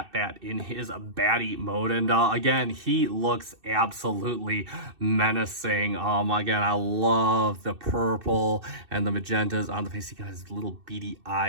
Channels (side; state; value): left; late; 2.6 ms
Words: Bat, in his batty mode. And again, he looks absolutely menacing. Again, I love the purple and the magentas on the face. He got his little beady